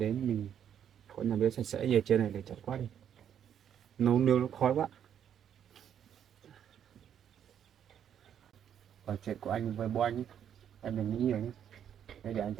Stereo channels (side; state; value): left; quieter; 9.2 dB